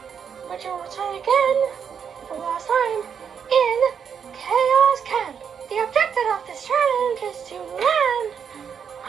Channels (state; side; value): quieter; left; 7.3 dB